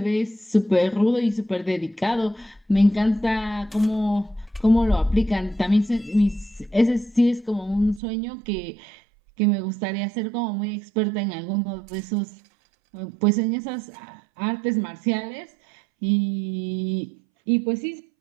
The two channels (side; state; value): left; drops out; at 8.0 s